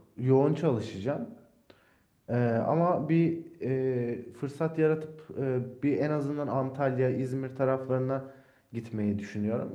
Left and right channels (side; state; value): both; identical; correlation 1.00